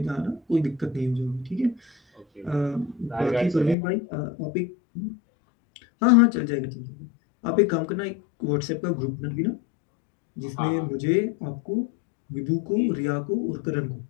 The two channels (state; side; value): drops out; right; at 3.8 s